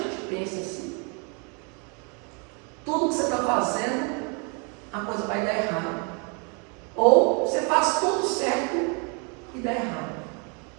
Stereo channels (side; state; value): left; quieter; 35.2 dB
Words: pensa assim: tudo que você está fazendo, a coisa vai dar errado. Ou você faz tudo certo e dá errado.